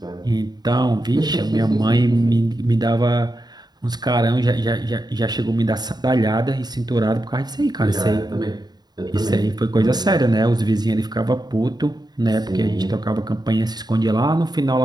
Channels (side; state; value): left; late; 0.20 ms